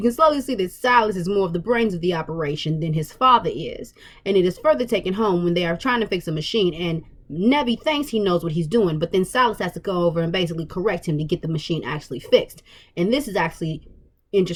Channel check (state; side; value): identical; both; correlation 1.00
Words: can slowly see that Silas is more of the brains of the operation than his father is. And it is further taken home when they are trying to fix a machine, and Nevi thinks he knows what he's doing, but then Silas has to go over and basically correct him to get the machine actually fixed. And this is actually